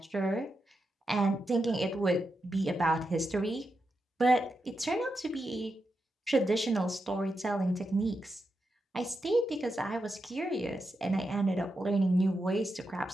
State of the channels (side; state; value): both; normal; correlation 0.87